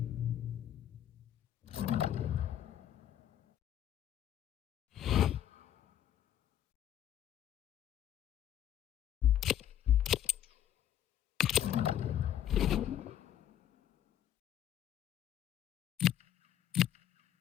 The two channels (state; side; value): quieter; right; 10.8 dB